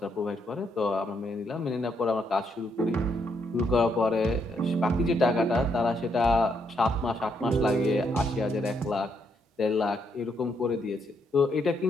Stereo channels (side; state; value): both; normal; correlation 0.76